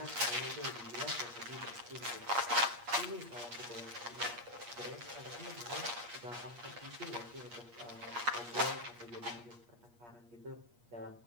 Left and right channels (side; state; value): left; late; 8.5 ms